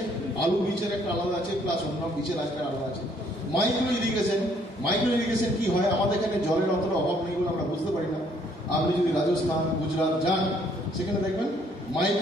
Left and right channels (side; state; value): both; normal; correlation 0.65